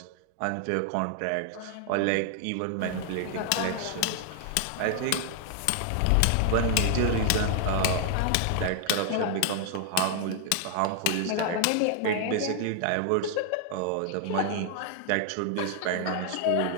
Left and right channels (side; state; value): both; different; correlation 0.00